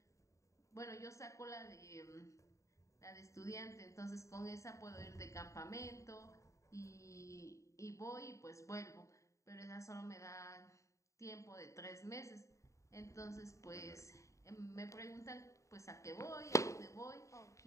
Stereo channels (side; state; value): right; late; 0.15 ms